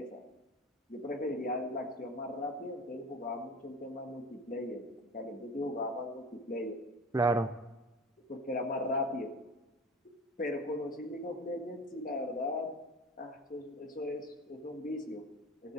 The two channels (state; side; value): normal; both; correlation 0.36